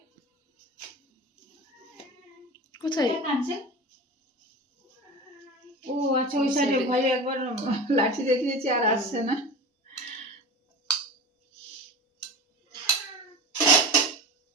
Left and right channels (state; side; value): normal; both; correlation 0.30